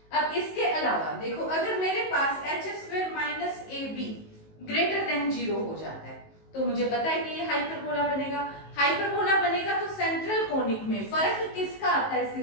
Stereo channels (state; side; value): late; right; 19 ms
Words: अब इसके अलावा देखो, अगर मेरे पास एच स्क्वायर माइनस ए बी ग्रेटर देन 0 हो जाता है, तो मुझे पता है कि ये हाइपरबोला बनेगा। हाइपरबोला बनेगा तो सेंट्रल कोनिक में फर्क किसका आता है,